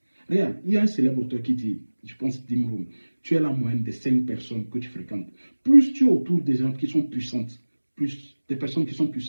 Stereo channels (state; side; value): inverted; both; correlation -1.00